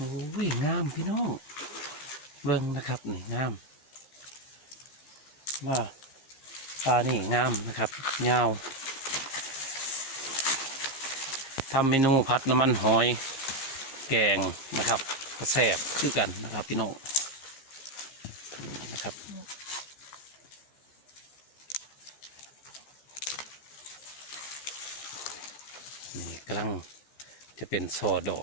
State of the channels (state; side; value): late; right; 15 ms